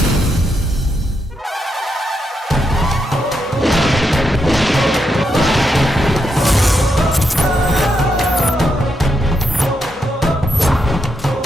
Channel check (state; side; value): normal; both; correlation 0.81